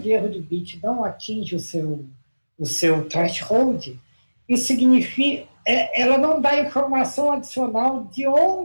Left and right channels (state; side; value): inverted; both; correlation -1.00